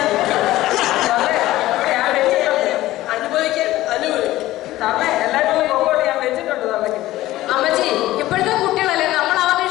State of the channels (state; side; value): quieter; right; 16.1 dB